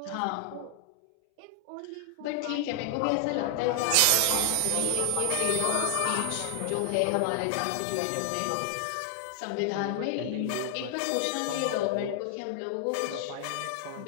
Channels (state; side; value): different; both; correlation 0.00